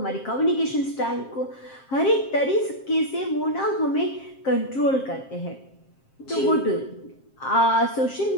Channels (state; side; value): late; right; 7.5 ms